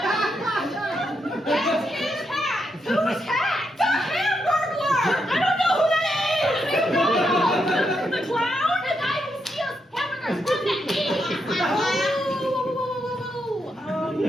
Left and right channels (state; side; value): normal; both; correlation 0.81